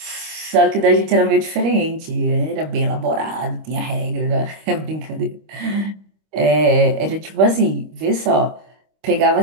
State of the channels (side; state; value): left; late; 25 ms